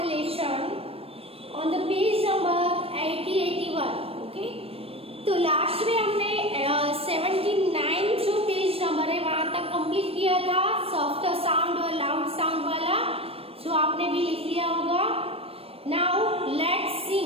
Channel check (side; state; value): left; late; 0.28 ms